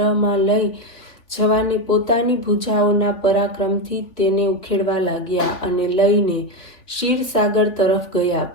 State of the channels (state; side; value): late; right; 3.5 ms